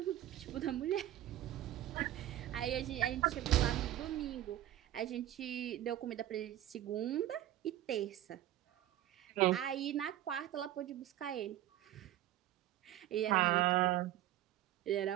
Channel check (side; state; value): left; quieter; 13.4 dB